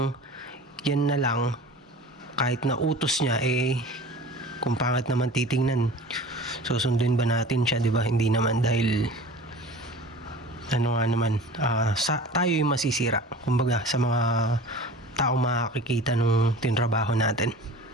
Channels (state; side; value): normal; both; correlation 0.40